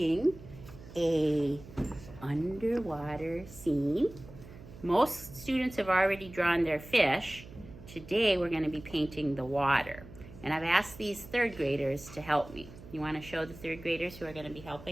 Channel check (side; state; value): right; noise; hum, 17 dB below the sound